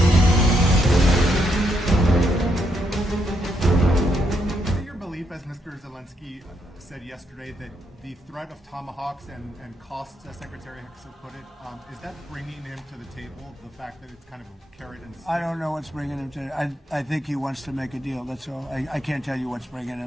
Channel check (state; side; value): normal; both; correlation 0.77